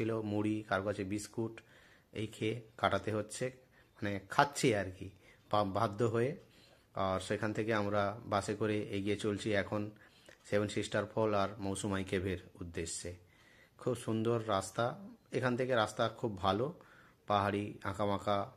মুড়ি, কার কাছে বিস্কুট, এই খেয়ে কাটাতে হচ্ছে, মানে খাচ্ছি আর কি বাধ্য হয়ে। আর সেখান থেকে আমরা বাসে করে এগিয়ে চলছি এখন 7 সিস্টার ফল আর মৌসুমাই কেভের উদ্দেশ্যে। খুব সুন্দর রাস্তা, এখান থেকে রাস্তা খুব ভালো, পাহাড়ি আঁকাবাঁকা,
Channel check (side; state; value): both; identical; correlation 1.00